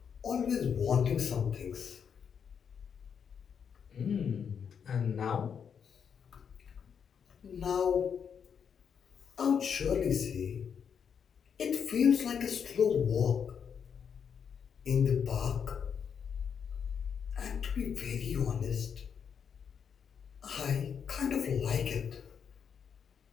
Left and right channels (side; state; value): right; quieter; 7.2 dB